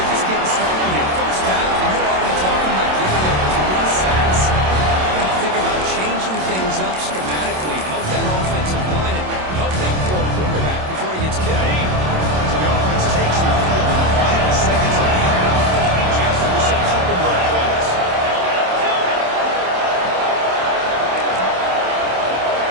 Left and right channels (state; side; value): late; left; 27 ms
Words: just getting started here. First half, and you're already talking about giving up 3 sacks. You know, think about changing things up schematically, help that offensive line, and help that poor quarterback before he gets killed. So the offense takes the field in the final seconds of the half. Chance for just a couple more plays.